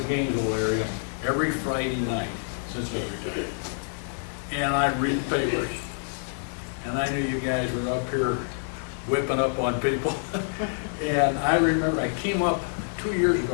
Gainesville area, every Friday night since I retired. And I read the papers. And I knew you guys were up here whipping up on people. And I remember I came up 3 years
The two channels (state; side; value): silent; right; 60 dB below the other